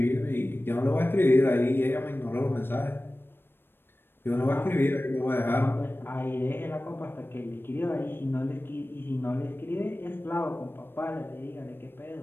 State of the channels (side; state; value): right; late; 0.10 ms